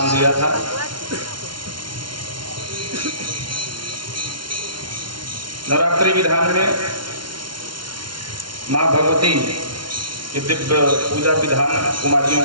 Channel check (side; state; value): left; late; 0.73 ms